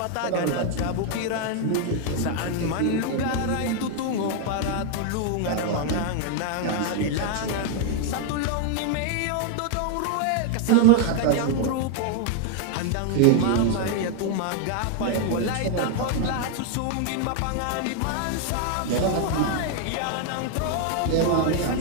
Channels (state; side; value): different; both; correlation 0.00